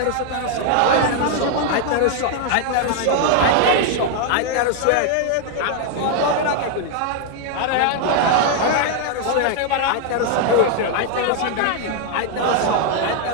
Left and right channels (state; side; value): different; both; correlation 0.00